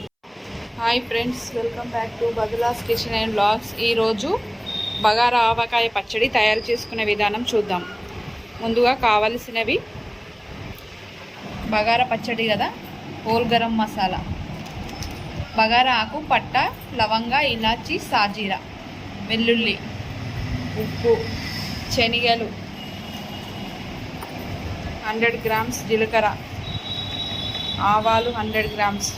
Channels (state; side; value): identical; both; correlation 1.00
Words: Hi friends, welcome back to బదులాస్ కిచెన్ అండ్ వ్లాగ్స్. ఈరోజు బగారా ఆవకాయ పచ్చడి తయారు చేసుకునే విధానం చూద్దాం. ముందుగా కావలసినవి బగారా పచ్చడి కదా, హోల్ గరం మసాలా, బగారా ఆకు, పట్ట, లవంగ, ఇలాచి, సాజీరా, వెల్లుల్లి, ఉప్పు, శనగలు, 100 గ్రామ్స్ జీలకర్ర, ఆవాలు 100 గ్రామ్స్,